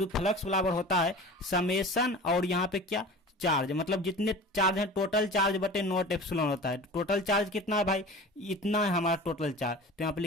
फ्लक्स बराबर होता है समेशन, और यहाँ पे क्या, चार्ज, मतलब जितने चार्ज है टोटल चार्ज बटे नॉट एप्सिलॉन होता है। टोटल चार्ज कितना है भाई, इतना है हमारा टोटल चार्ज। तो यहाँ पे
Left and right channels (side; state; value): both; normal; correlation 0.37